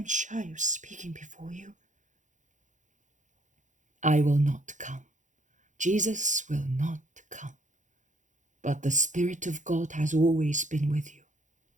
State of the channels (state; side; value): late; left; 0.36 ms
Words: shy of speaking before you. I will not come. Jesus will not come. But the Spirit of God has always been with you.